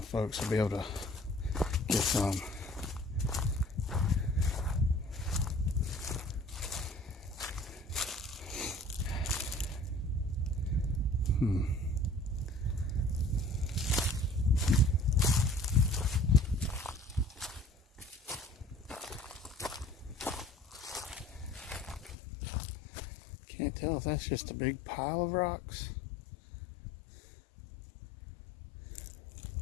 folks will be able to get some. Can't tell if that's just a big pile of rocks.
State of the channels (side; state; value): right; drops out; at 22.2 s